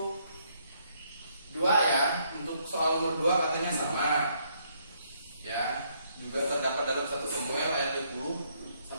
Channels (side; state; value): both; inverted; correlation -0.71